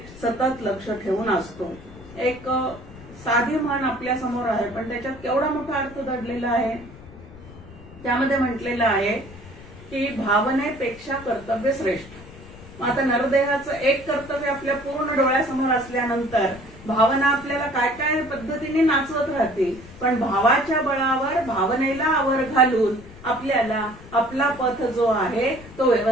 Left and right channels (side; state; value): left; noise; rumble, 18 dB below the sound